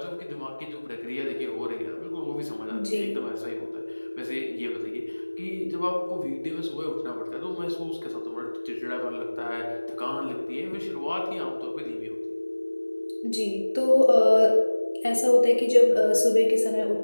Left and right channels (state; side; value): inverted; both; correlation -1.00